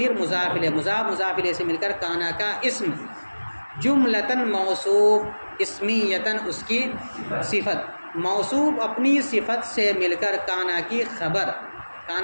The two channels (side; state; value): both; inverted; correlation -1.00